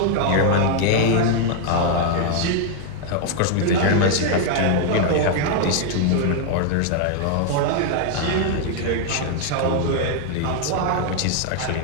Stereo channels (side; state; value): both; different; correlation 0.00